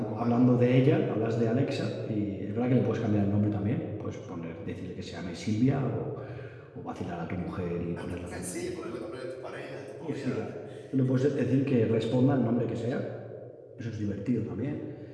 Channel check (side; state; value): both; identical; correlation 1.00